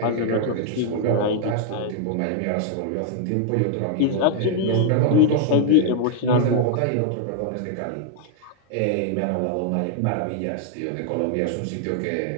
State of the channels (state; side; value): different; both; correlation 0.00